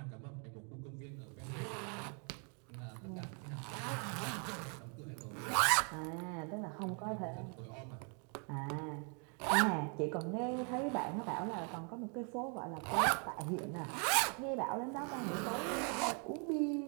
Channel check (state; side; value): quieter; left; 38.4 dB